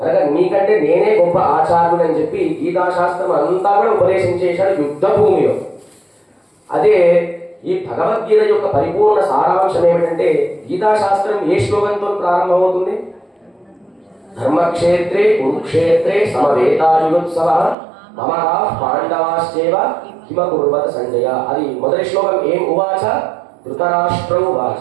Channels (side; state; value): left; drops out; at 17.8 s